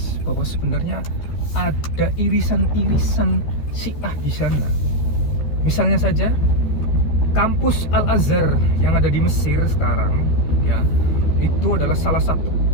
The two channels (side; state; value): right; late; 13 ms